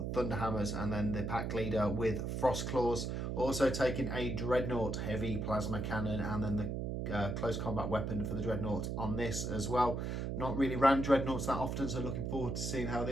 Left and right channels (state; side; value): noise; right; hum, 2 dB below the sound